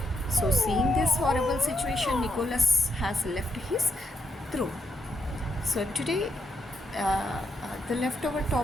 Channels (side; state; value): both; normal; correlation 0.79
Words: So, seeing this horrible situation, Nicholas has left his throne. So, today the leftover